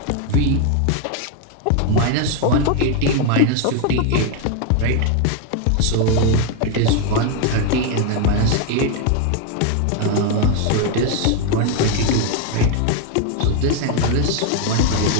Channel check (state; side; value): different; both; correlation 0.01